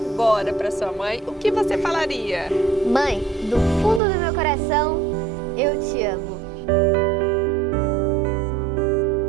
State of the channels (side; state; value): left; drops out; at 4.0 s